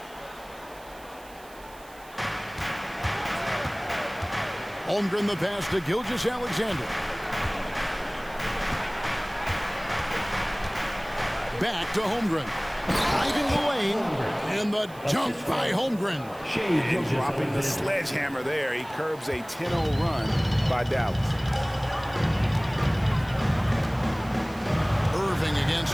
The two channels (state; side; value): noise; right; hiss, 23 dB below the sound